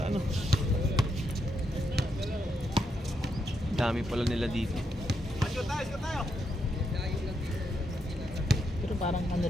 ano. Dami pala nila dito. Pero parang ano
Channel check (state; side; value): normal; both; correlation 0.81